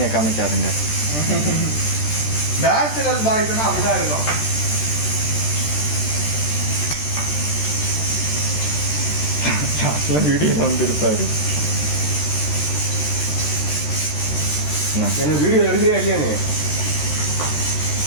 காமிக்காதுங்க. பேச்சுலர் பாய்ஸ்னா அப்படிதான் இருக்கும். வீடியோ வந்துருப்பாரு. என்ன வீடியோ எடுக்கிறியா இல்லையா நீ?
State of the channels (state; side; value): late; right; 13 ms